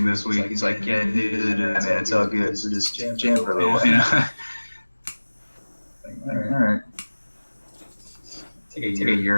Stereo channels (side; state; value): both; inverted; correlation -1.00